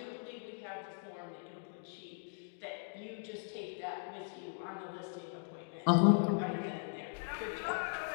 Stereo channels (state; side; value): silent; right; digital silence